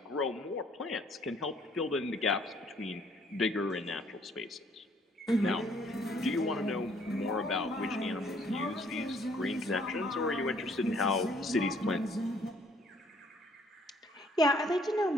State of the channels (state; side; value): normal; both; correlation 0.62